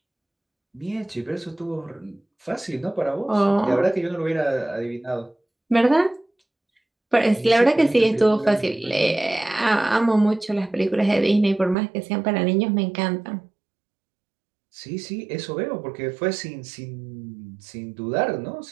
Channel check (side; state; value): left; drops out; at 11.8 s